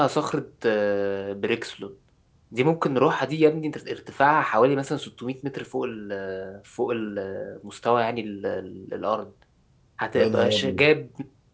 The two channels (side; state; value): both; identical; correlation 1.00